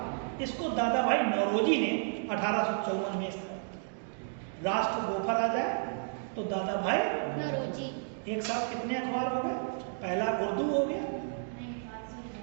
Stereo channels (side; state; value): left; silent; digital silence